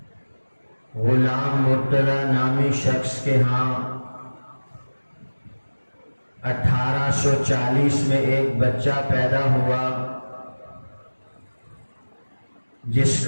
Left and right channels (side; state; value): both; inverted; correlation -1.00